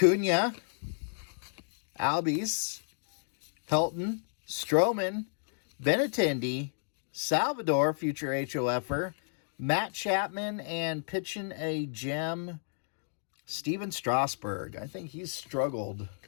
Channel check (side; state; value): right; silent; digital silence